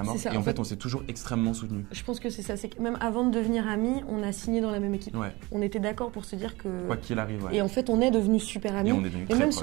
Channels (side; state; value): left; quieter; 22.7 dB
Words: mort. Et en fait, on s'est toujours extrêmement soutenus. Je pense que c'est ça, c'est que même avant de devenir amis, on a signé dans la même équipe. Ouais. On était d'accord pour se dire que... Quoi qu'il arrive, ouais. Et en fait, on est devenus super amis. Et on est devenus et même très